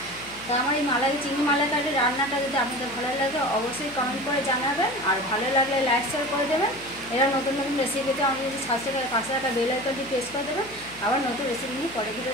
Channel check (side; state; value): left; noise; hum, 20 dB below the sound